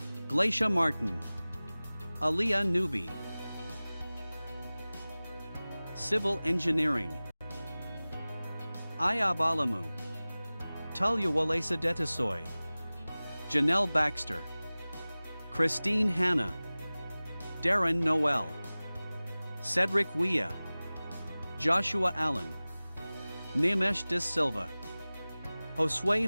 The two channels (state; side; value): inverted; both; correlation -0.98